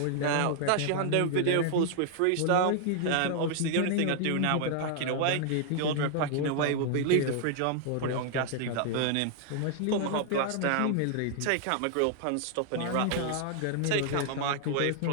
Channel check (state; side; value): different; both; correlation 0.00